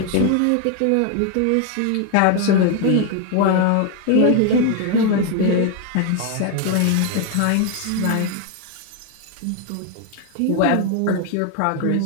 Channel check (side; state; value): both; different; correlation 0.01